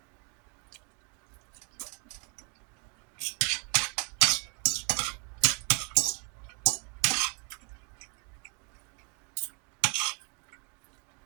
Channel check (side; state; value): left; quieter; 36.5 dB